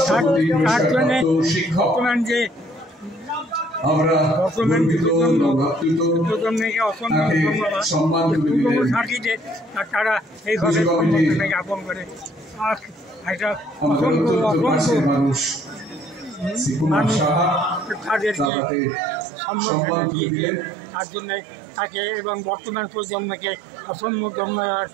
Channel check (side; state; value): left; drops out; at 18.5 s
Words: তারা এইভাবে জ্ঞাপন করে তাদেরকে সম্বর্ধনা দিয়েছে। তার জন্য তাকে এবং বর্তমান প্রজন্মকে অসংখ্য ধন্যবাদ।